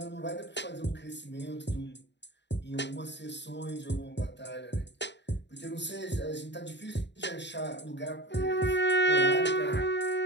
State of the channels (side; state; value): right; late; 0.51 ms